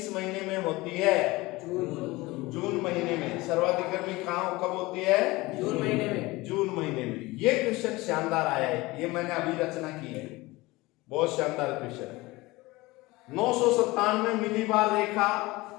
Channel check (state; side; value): quieter; right; 21.1 dB